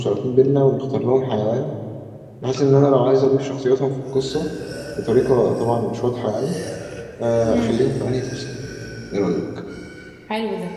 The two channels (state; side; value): identical; both; correlation 1.00